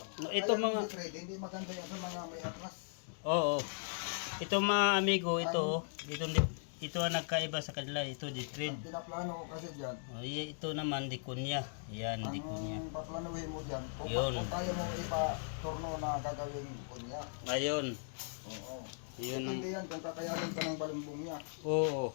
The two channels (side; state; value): right; silent; digital silence